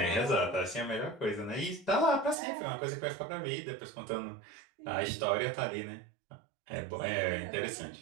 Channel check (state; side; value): drops out; left; at 2.4 s